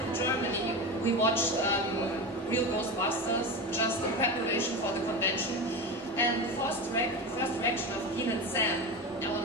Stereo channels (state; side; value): noise; right; rumble, 28 dB below the sound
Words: Germany, we watched Real Ghostbusters just in preparation for the convention. And the first reaction of Dean and Sam,